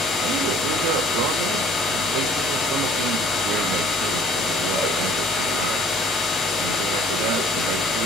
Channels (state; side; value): normal; both; correlation 0.54